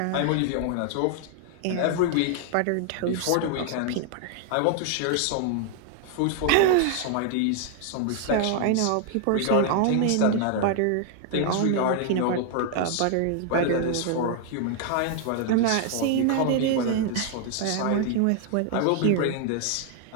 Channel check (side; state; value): both; different; correlation 0.00